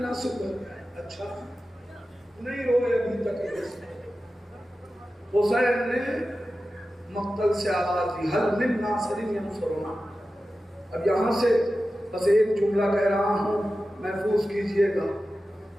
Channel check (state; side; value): normal; both; correlation 0.93